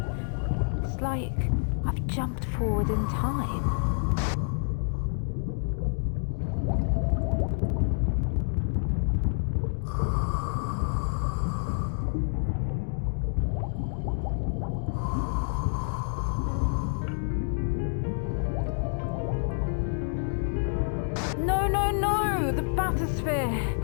It's like I've jumped forward in time. No! The bathysphere!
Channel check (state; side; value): silent; right; digital silence